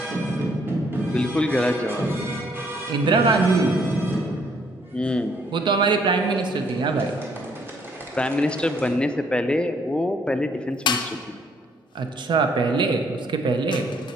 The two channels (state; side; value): normal; both; correlation 0.66